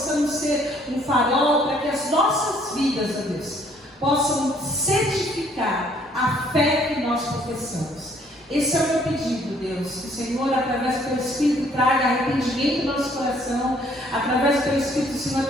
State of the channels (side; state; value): both; normal; correlation 0.62